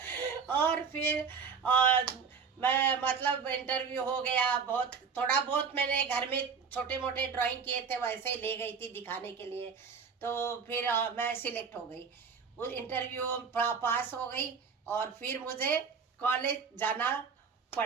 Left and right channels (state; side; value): quieter; left; 5.9 dB